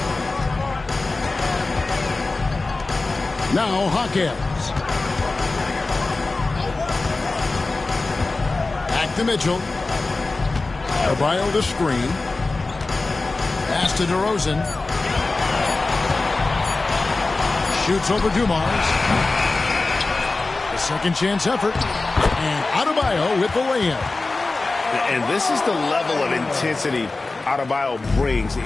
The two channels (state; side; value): quieter; right; 3.4 dB